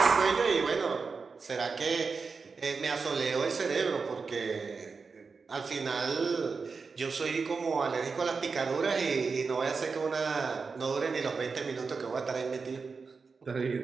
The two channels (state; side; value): quieter; left; 4.8 dB